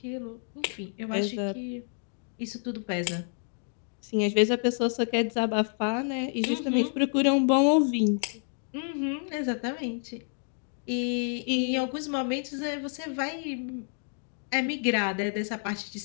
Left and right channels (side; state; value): right; silent; 58 dB below the other